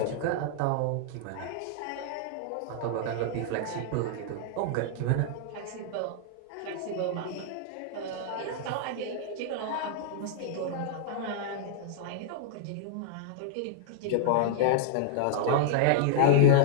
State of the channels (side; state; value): both; different; correlation -0.01